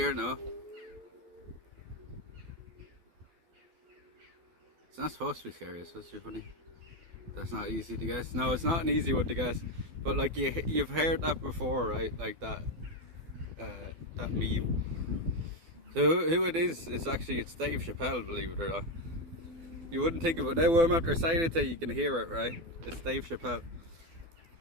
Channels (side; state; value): left; late; 12 ms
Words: no. It's not supposed to be scary, it's supposed to be funny. That's not easy to guess. No, it's not an easy one to guess. But like you've heard that before, right? Like that that meme. So who it is actually, it's Dave Chappelle, believe it or not. You wouldn't think of it. Now I'm after saying it to you, you can hear it, right? It's Dave Chappelle.